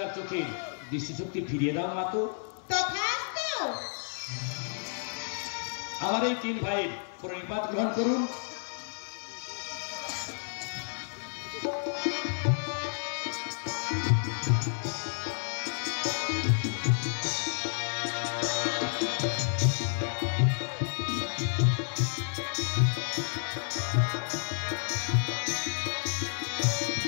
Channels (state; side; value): silent; right; 57 dB below the other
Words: চোখে দৃষ্টিশক্তি ফিরিয়ে দাও মা। তো তথাস্তু। আমার এই 3 ভাইয়ের প্রণিপাত গ্রহণ করুন।